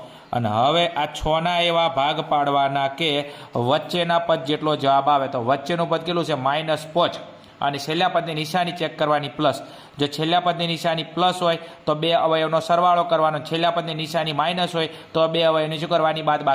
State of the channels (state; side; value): identical; both; correlation 1.00